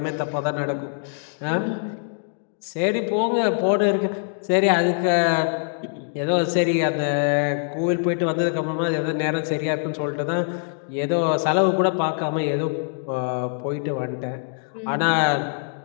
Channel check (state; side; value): silent; right; digital silence